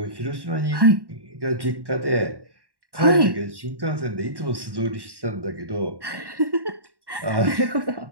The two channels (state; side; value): late; left; 1.1 ms